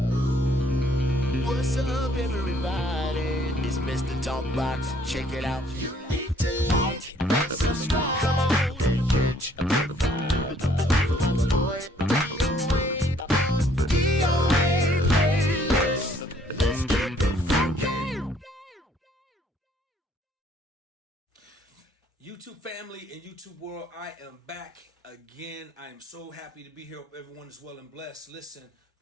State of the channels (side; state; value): both; normal; correlation 0.62